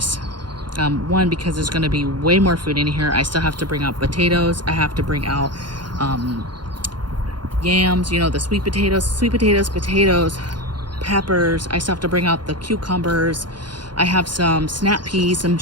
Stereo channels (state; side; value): late; left; 0.71 ms